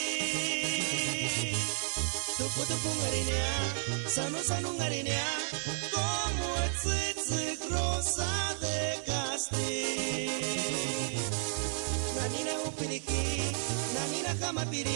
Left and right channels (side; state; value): left; silent; digital silence